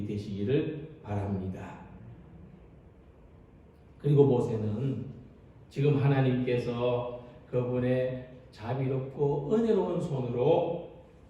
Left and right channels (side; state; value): both; identical; correlation 1.00